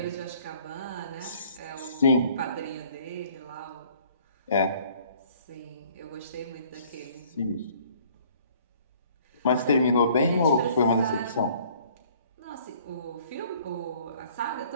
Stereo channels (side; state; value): both; inverted; correlation -0.57